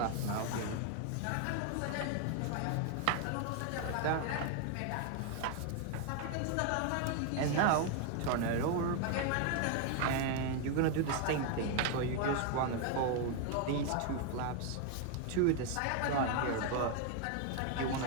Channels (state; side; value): different; both; correlation 0.01